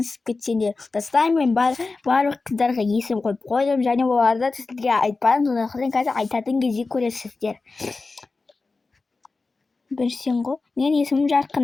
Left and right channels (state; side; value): quieter; right; 3.8 dB